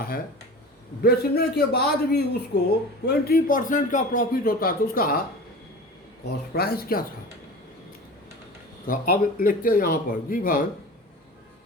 है, बेचने के बाद भी उसको 20% का प्रॉफिट होता है। तो उसका कॉस्ट प्राइस क्या था? तो अब लिखते हैं यहाँ पर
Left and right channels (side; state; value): both; normal; correlation 0.35